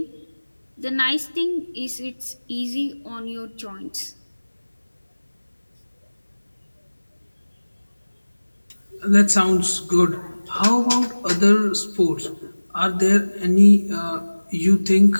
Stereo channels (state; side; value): inverted; both; correlation -1.00